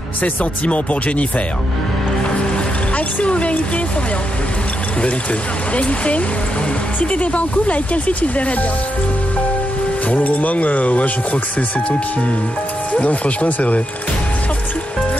ses sentiments pour Jennifer. Action ou vérité, Florian? Vérité. Vérité. Si t'étais pas en couple, avec quelle fille tu te verrais bien? Pour le moment, ouais, je crois que c'est toi qui... Non, franchement, c'est vrai. Sorti.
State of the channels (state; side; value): normal; both; correlation 0.84